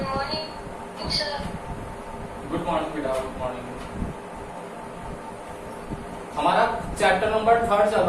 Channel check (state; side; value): identical; both; correlation 1.00